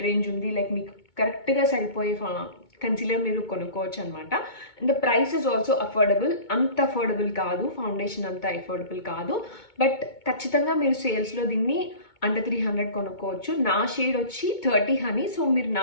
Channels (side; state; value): right; late; 2.2 ms